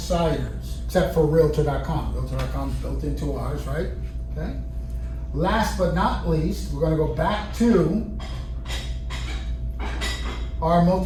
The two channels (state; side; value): identical; both; correlation 1.00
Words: except for Realtor.com. Realtor.com is built into ours, right? Okay. Last but not least, we're gonna go back to our